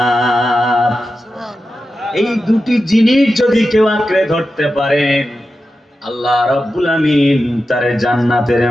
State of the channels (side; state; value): both; normal; correlation 0.91